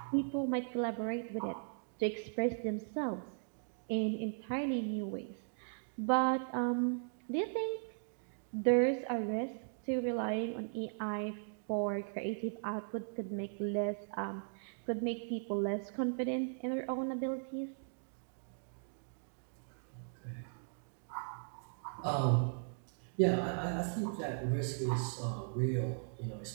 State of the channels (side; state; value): left; silent; digital silence